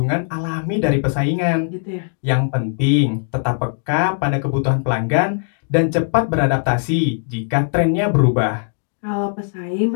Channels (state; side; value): silent; right; 63 dB below the other